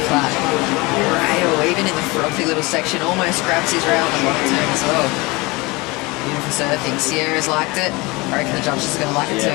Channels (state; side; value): quieter; right; 24.0 dB